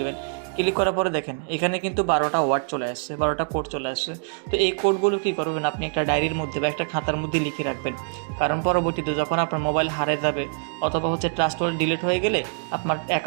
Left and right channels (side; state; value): left; silent; 59 dB below the other